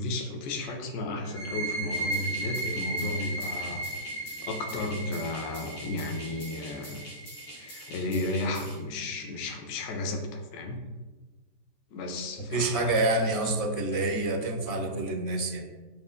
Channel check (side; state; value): right; late; 14 ms